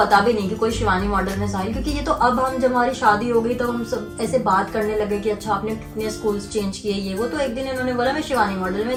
भी नहीं कि कोई शिवानी मॉडल में साहिल, क्योंकि ये तो अब हम जब हमारी शादी हो गई तो हम सब ऐसे बात करने लगे कि अच्छा आपने कितने स्कूल्स चेंज किए ये वो। तो एक दिन इन्होंने बोला मैं शिवानी मॉडल में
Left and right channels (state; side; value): identical; both; correlation 1.00